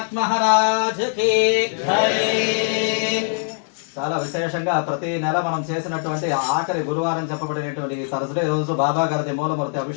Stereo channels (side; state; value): right; silent; digital silence